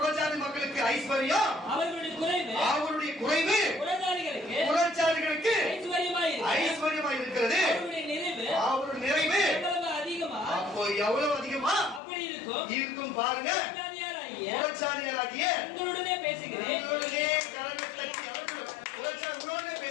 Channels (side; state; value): right; drops out; at 12.0 s